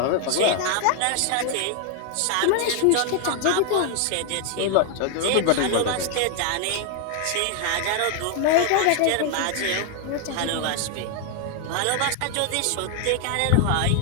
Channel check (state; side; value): different; both; correlation 0.00